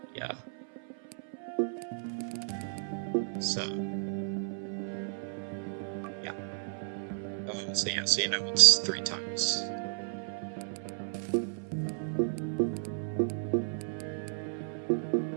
Yeah. So yeah. So yeah, so it's 3 times.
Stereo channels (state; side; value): silent; left; 56 dB below the other